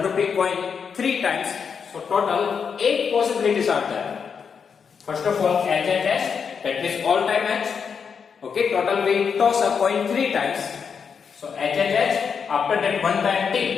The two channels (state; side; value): quieter; right; 6.4 dB